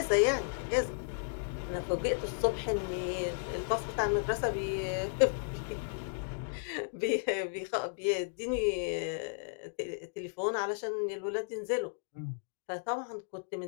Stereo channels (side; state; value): right; silent; digital silence